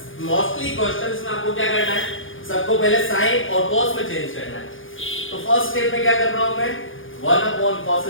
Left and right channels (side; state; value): right; late; 0.58 ms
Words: मोस्टली क्वेश्चंस में आपको क्या करना है, सबको पहले साइन और कॉस में चेंज करना है। तो फर्स्ट स्टेप में क्या कर रहा हूं मैं, 1 upon cos